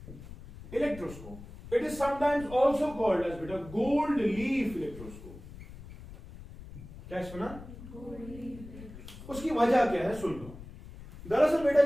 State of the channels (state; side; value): noise; left; rumble, 15 dB below the sound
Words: Electroscope. It is sometimes also called as beta gold leaf electroscope. क्या सुना? उसकी वजह क्या है सुन लो। दरअसल बेटा